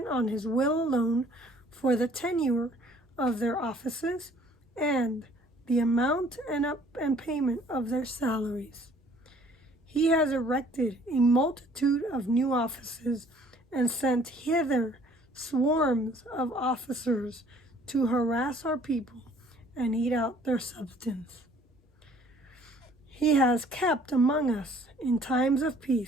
on his will alone for the tenure of their offices and the amount and payment of their salaries. He has erected a multitude of new offices and sent hither swarms of officers to harass our people and eat out their substance. He has kept among us in times of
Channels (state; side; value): normal; both; correlation 0.57